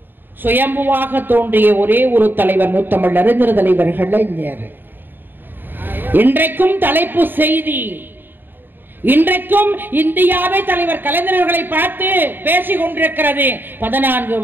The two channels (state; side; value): late; left; 0.094 ms